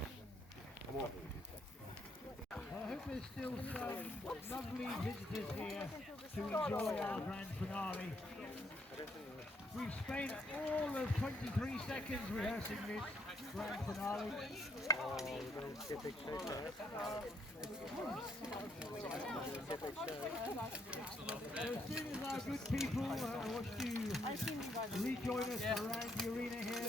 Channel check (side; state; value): both; normal; correlation 0.72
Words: I hope there's still some lovely visitors here to enjoy our grand finale. We've spent all of 23 seconds rehearsing this grand finale. Oh, we're going to see a big show there. So as soon as our good people want to rejoin us around the arena